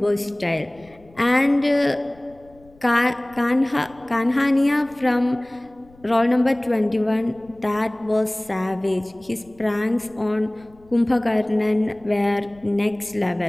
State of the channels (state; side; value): noise; left; rumble, 27 dB below the sound